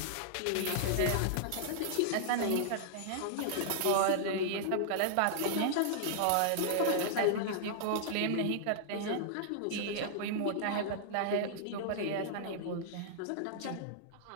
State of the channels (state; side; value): different; both; correlation -0.01